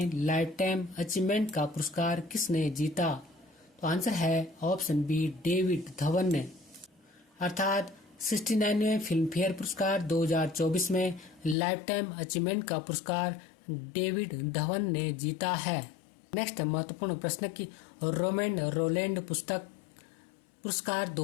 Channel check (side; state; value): right; drops out; at 11.6 s